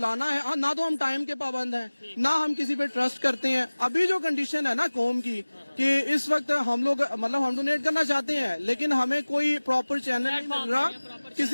ہے, نہ تو ہم ٹائم کے پابند ہیں, نہ ہم کسی پہ ٹرسٹ کرتے ہیں. ابھی جو کنڈیشن ہے نا قوم کی کہ اس وقت ہم لوگ مطلب ہم ڈونیٹ کرنا چاہتے ہیں, لیکن ہمیں کوئی پراپر چینل نہیں مل رہا. کس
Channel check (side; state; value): both; inverted; correlation -1.00